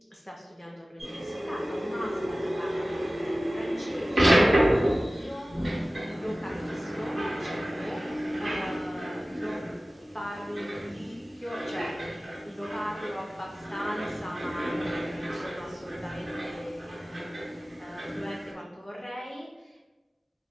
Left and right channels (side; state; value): both; normal; correlation 0.97